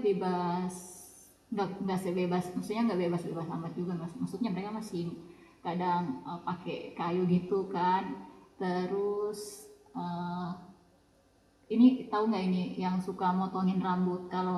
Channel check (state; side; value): identical; both; correlation 1.00